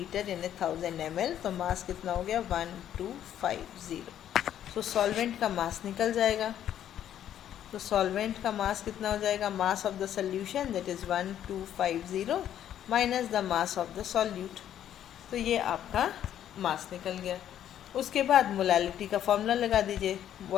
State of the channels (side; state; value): right; quieter; 10.7 dB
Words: यानी 1000 ml, तो मास कितना हो गया 1250। तो सॉल्वेंट का मास निकल जाएगा, तो सॉल्वेंट का मास कितना हो जाएगा, mass of the solution that is 1250 minus the mass of the solute, तो ये आपका मास निकल गया। उसके बाद मोलैलिटी का फॉर्मूला लगा दीजिए,